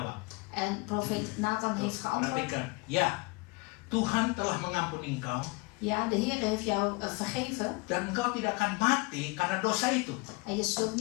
En profeet Nathan heeft geantwoord. Perhatikan, ya, Tuhan telah mengampuni engkau. Ja, de Heere heeft jou vergeven. Dan engkau tidak akan mati karena dosa itu. En je zult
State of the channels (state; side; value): quieter; right; 27.3 dB